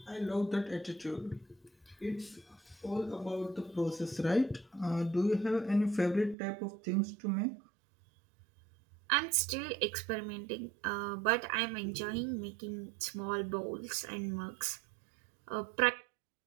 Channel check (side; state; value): left; drops out; at 6.4 s